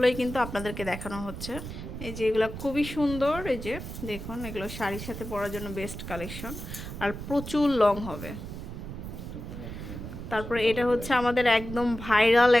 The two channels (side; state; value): right; noise; rumble, 9 dB below the sound